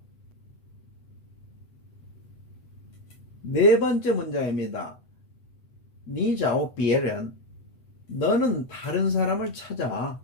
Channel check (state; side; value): late; right; 8.5 ms